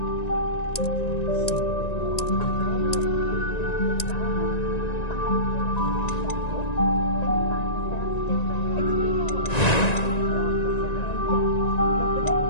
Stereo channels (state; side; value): late; right; 1.9 ms